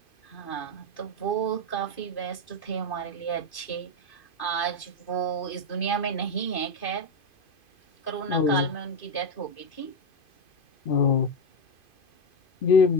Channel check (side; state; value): right; late; 2.5 ms